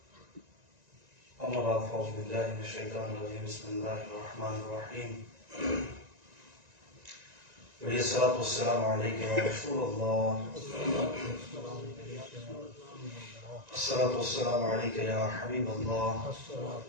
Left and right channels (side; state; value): left; late; 1.9 ms